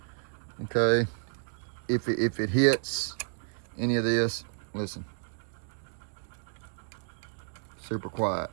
okay, if it hits any of this, listen. Super quiet,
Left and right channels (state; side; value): silent; left; digital silence